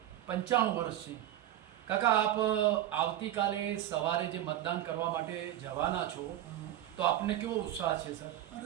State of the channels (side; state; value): left; quieter; 12.9 dB